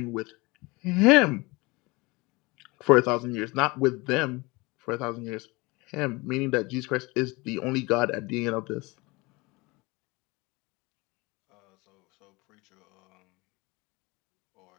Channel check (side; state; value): right; quieter; 24.5 dB